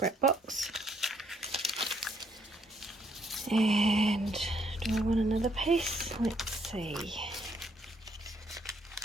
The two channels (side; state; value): both; normal; correlation 0.70